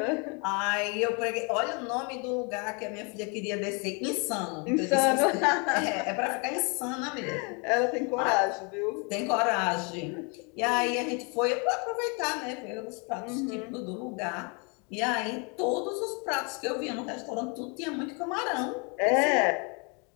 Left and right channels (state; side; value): quieter; right; 33.4 dB